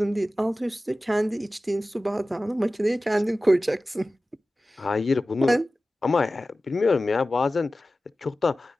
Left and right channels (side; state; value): both; normal; correlation 0.95